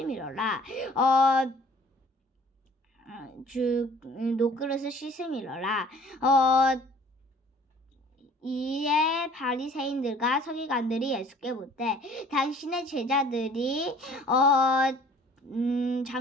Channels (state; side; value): normal; both; correlation 0.53